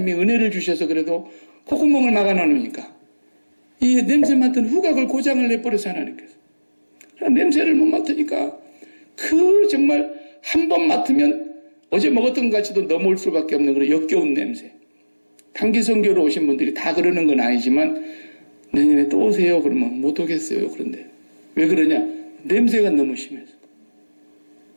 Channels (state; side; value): inverted; both; correlation -1.00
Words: 은혜를 주셔서 그래도 콧구멍을 막아놓으니까 이 냄새 맡은 후각을 고장을 내버려서 하나님께서 냄새를 못 맡으니까 그 정말 한 번 맡으면 어제 먹었던 것 같이도 넘어올 수밖에 없는 그런 역겨운 냄새. 단기 선교로 오신 분들이 다 그러는 건 아니지만 내년에 또 오세요 그러면 못 오겠어요. 그런데 왜 그러냐? 냄새가 너무 심해서.